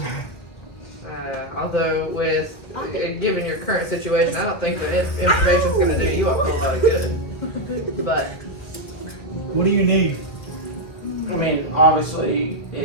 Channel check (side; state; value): right; late; 1.8 ms